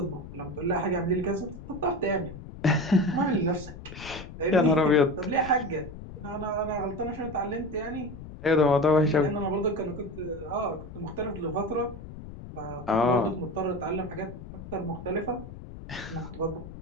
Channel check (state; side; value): noise; left; rumble, 13 dB below the sound